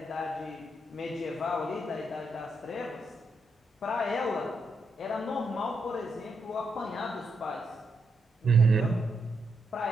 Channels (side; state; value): both; normal; correlation 0.81